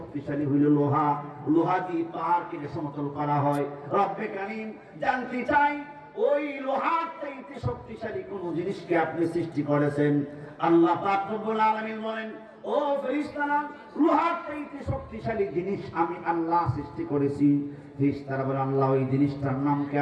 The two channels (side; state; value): both; identical; correlation 1.00